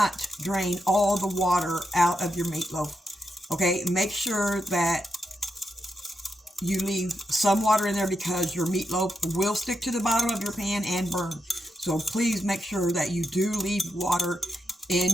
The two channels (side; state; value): both; normal; correlation 0.84